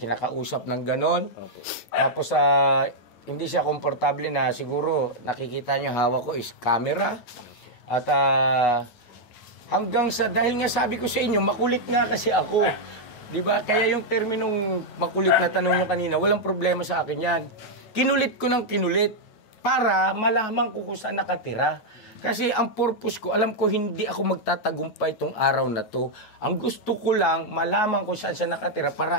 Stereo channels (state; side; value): late; right; 9.3 ms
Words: ng ganon. Tapos, hindi siya komportable na siguro, nakikita niyo hawak ko is camera. At, hanggang sa, dahil nga sabi ko sa inyo, makulit nga kasi ako. Di ba? Kaya yung terminong makulit na tanong nyo kanina, walang problema sa akin yan. Kinulit ko ng kinulit para malaman ko kung saan nakatira. Kasi ang purpose ko, alam ko hindi ako magtatagumpay itong araw na to. Ang gusto ko lang, malaman kung saan siya nakatira